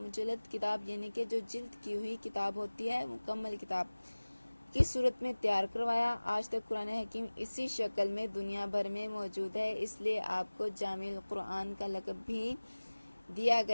کتاب یعنی کہ جو جلد کی ہوئی کتاب ہوتی ہے، مکمل کتاب کی صورت میں تیار کروایا۔ آج تک قرآن حکیم اسی شکل میں دنیا بھر میں موجود ہے، اس لیے آپ کو جامع القرآن کا لقب بھی دیا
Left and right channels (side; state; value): both; inverted; correlation -1.00